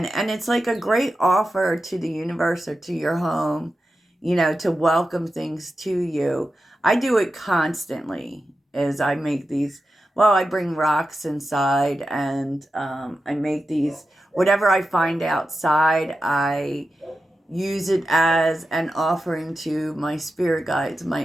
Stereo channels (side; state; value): both; normal; correlation 0.91